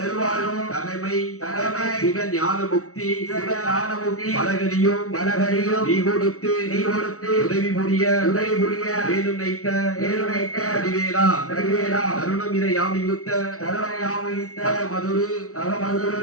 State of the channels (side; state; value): right; late; 0.64 ms